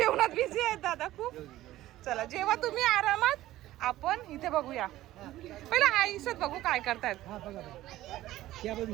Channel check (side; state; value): left; quieter; 15.2 dB